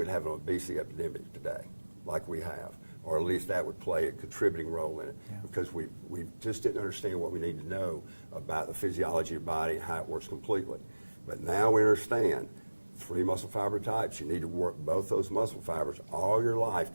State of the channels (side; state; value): both; inverted; correlation -1.00